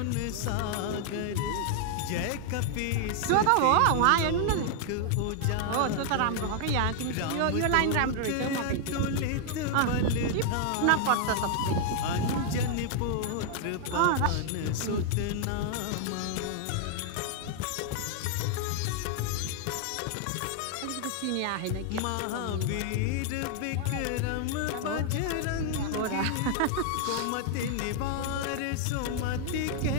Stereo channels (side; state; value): both; different; correlation 0.00